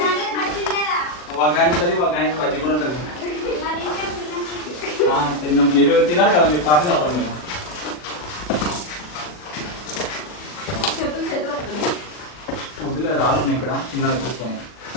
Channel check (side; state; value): right; late; 40 ms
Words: తినాలి కదా మీరు, కాఫీ తాగుతాం మేము.